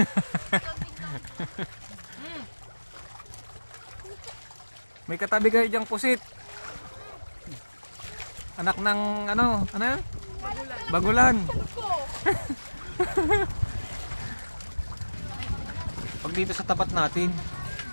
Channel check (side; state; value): both; inverted; correlation -1.00